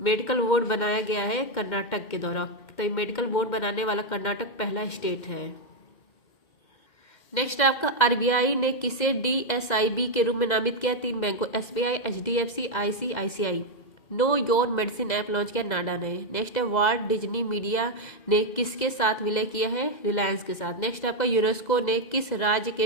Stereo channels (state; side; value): late; right; 2.0 ms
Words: मेडिकल बोर्ड बनाया गया है कर्नाटक के द्वारा। तो मेडिकल बोर्ड बनाने वाला कर्नाटक पहला स्टेट है। नेक्स्ट आपका आरबीआई ने किसे डीएसआईबी के रूप में नामित किया? 3 बैंकों SBI, HDFC, ICICI. Know your medicine app launch किया नाडा ने। नेक्स्ट है वॉल्ट डिज्नी मीडिया ने किसके साथ विलय किया है? रिलायंस के साथ। नेक्स्ट आपका यूनेस्को ने किस राज्य के